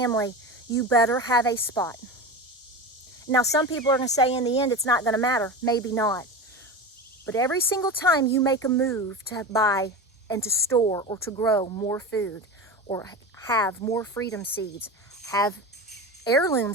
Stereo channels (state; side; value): normal; both; correlation 0.26